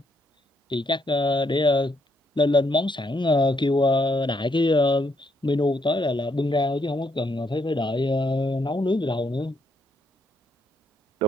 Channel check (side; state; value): both; normal; correlation 0.74